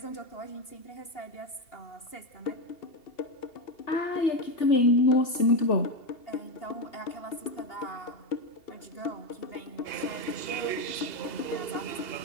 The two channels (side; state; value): right; late; 2.7 ms